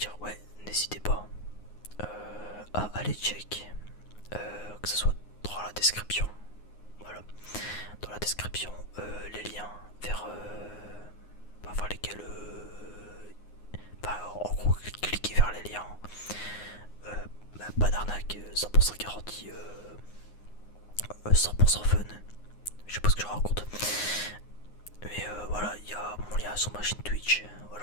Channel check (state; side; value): late; right; 9.6 ms